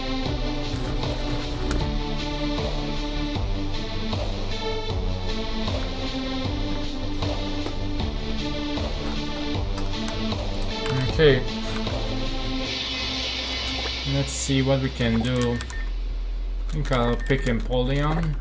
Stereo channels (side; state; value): both; identical; correlation 1.00